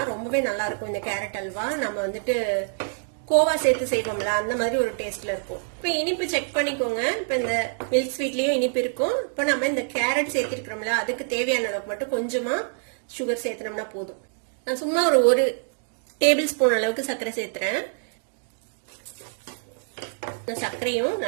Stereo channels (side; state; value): left; silent; digital silence